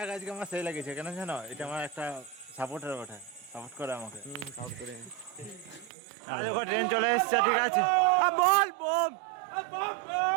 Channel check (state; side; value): drops out; left; at 5.9 s